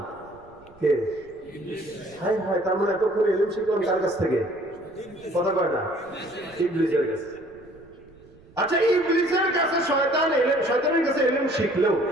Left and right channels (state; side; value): noise; right; rumble, 26 dB below the sound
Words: কে? ইবলিস। হায় হায়, তার মানে এতক্ষণ ইলম শিখলাম কার কাছ থেকে? কথা কয় না, ইবলিসের কাছে। আচ্ছা, ইবলিসের কাছে শয়তান এলেম, শয়তানের কাছে এলেম শিখলেও